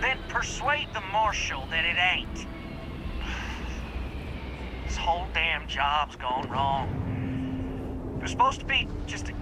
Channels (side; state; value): both; identical; correlation 1.00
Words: persuade the Marshal that it ain't. This whole damn job's gone wrong. It was supposed to be just a